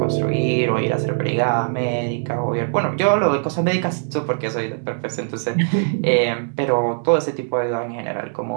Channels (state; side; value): silent; left; digital silence